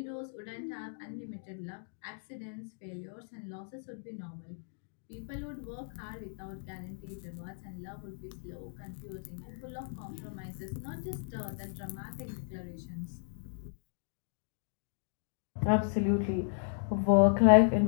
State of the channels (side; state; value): right; silent; digital silence